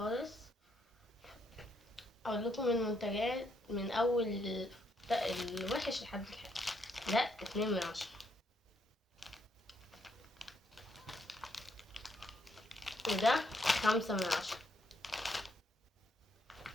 اقول لكم المنتجات من اول الوحش لحد الحلو. ده 2/10. وده 5/10.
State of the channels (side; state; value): both; normal; correlation 0.74